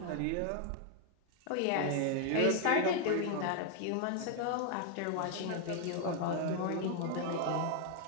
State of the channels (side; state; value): both; different; correlation 0.00